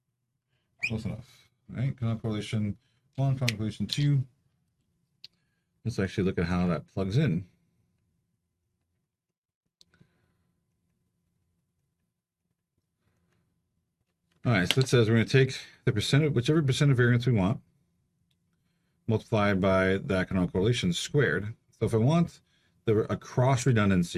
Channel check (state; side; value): identical; both; correlation 1.00